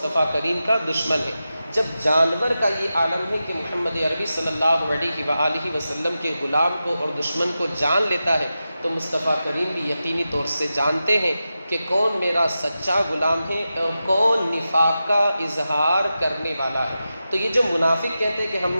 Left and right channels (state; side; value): inverted; both; correlation -0.92